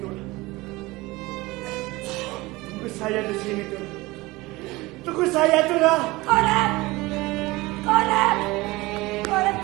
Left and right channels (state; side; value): quieter; left; 21.1 dB